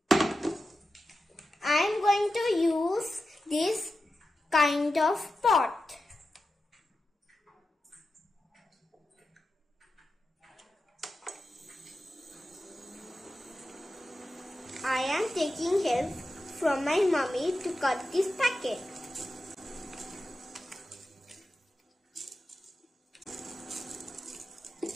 I am going to use this kind of pot. I am taking help from my mummy to cut this packet.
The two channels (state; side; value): normal; both; correlation 0.91